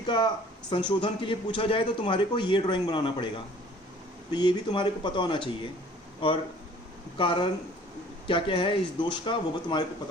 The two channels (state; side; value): normal; both; correlation 0.52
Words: का संशोधन के लिए पूछा जाए तो तुम्हारे को ये ड्राइंग बनाना पड़ेगा। तो ये भी तुम्हारे को पता होना चाहिए, और कारण क्या क्या है इस दोष का वो भी तुम्हारे को